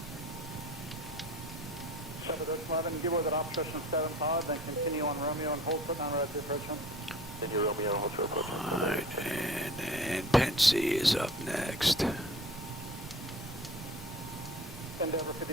11, give with an obstruction 7 pod, then continue on Romeo and hold foot non-right approachment. Continue Romeo and hold foot approachment. Alright, and then Pensi is up next. Endeavor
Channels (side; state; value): both; normal; correlation 0.44